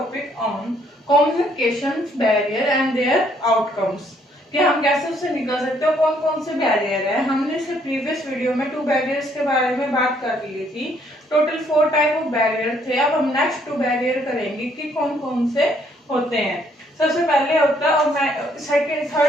on communication barrier and their outcomes. कि हम कैसे उससे निकल सकते हो, कौन कौन से बैरियर है। हमने इसके प्रीवियस वीडियो में 2 बैरियर्स के बारे में बात कर ली थी। टोटल 4 टाइप ऑफ बैरियर थे। अब हम नेक्स्ट 2 बैरियर करेंगे कि कौन कौन से होते हैं। सबसे पहले होता है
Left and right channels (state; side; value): normal; both; correlation 0.67